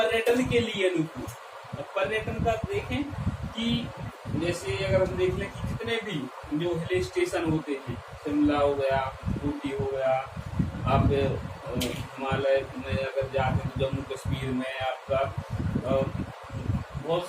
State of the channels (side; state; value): both; identical; correlation 1.00